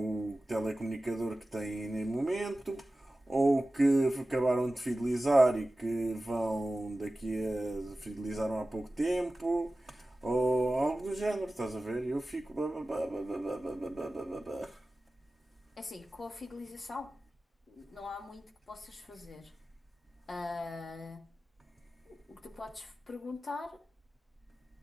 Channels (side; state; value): both; normal; correlation 0.96